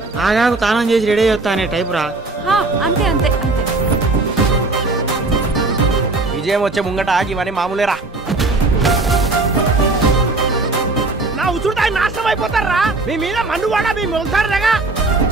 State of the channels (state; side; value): quieter; left; 3.3 dB